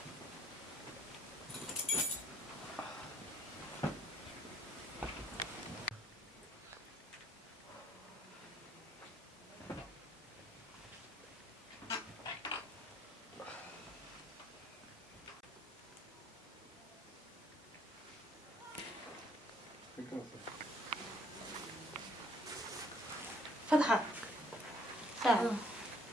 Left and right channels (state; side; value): normal; both; correlation 0.63